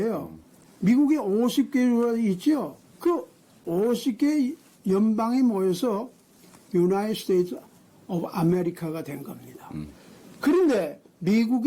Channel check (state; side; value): identical; both; correlation 1.00